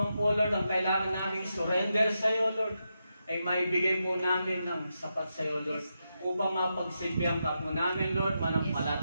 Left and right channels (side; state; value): both; inverted; correlation -0.86